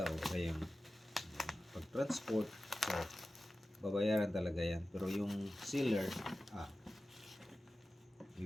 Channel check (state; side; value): normal; both; correlation 0.94